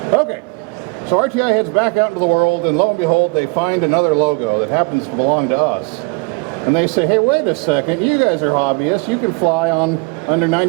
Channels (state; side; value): quieter; left; 29.8 dB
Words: Okay, so RTI heads back out into the world, and lo and behold, they find another logo that happens to belong to us. And they say, "Hey, wait a second, you guys are hobbyists, you can fly under